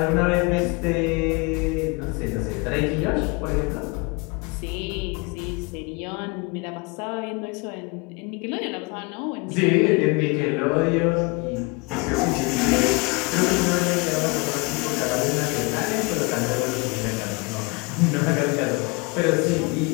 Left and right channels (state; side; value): quieter; right; 28.1 dB